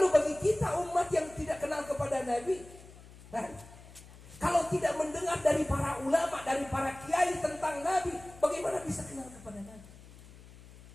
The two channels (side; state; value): left; noise; hum, 20 dB below the sound